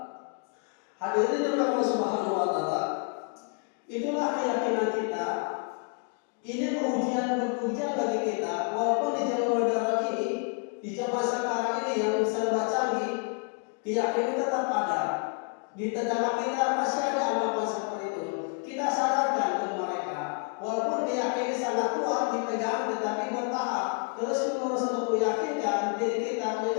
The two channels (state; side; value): quieter; right; 38.4 dB